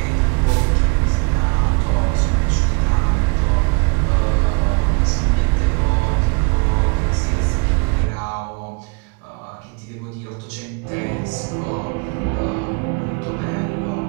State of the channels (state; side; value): quieter; left; 33.7 dB